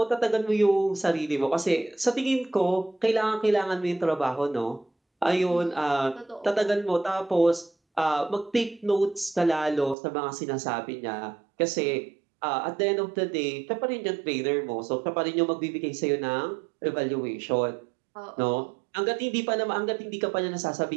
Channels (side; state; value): left; drops out; at 10.0 s